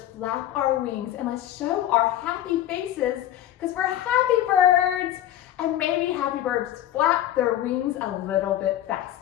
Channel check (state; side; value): quieter; right; 12.4 dB